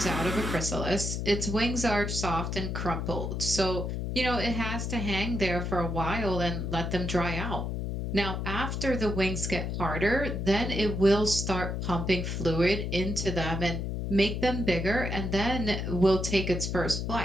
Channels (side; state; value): left; noise; hum, 3 dB below the sound